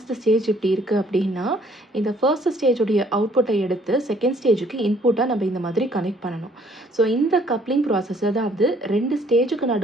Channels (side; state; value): both; normal; correlation 0.61